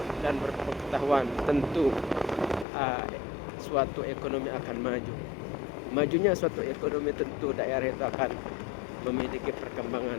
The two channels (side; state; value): right; drops out; at 2.7 s